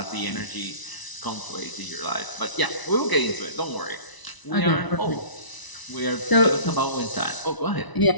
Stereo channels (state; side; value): late; right; 1.0 ms